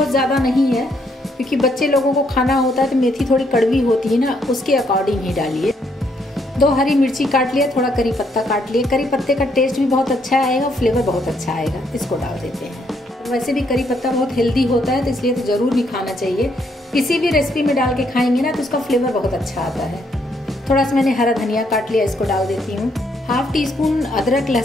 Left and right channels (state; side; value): normal; both; correlation 0.72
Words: ज़्यादा नहीं है, क्योंकि बच्चे लोगों को खाना होता है तो मेथी थोड़ी कड़वी होती है ना, उसके अकॉर्डिंग ही डालिए। 2 हरी मिर्ची काट लिया, थोड़ा करी पत्ता काट लिया। करी पत्ते का टेस्ट भी बहुत अच्छा आएगा, फ्लेवर बहुत अच्छा आएगा। इसको डाल देते हैं। वैसे भी करी पत्ता बहुत हेल्दी होता है, तो इसलिए तो ज़रूर भी खाना चाहिए। किसी भी रेसिपी में डाल के खाएंगे ना तो उसका फ्लेवर बहुत अच्छा आता है। थोड़ा सा मैंने हरा धनिया काट लिया, इसको डाल देती हूँ। 1/2 टीस्पून अदरक